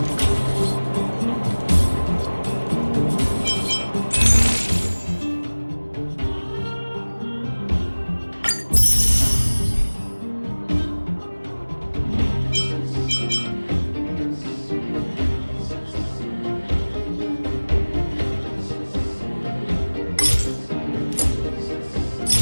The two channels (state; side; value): inverted; both; correlation -1.00